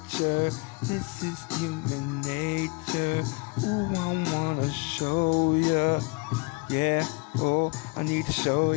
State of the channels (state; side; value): quieter; right; 29.7 dB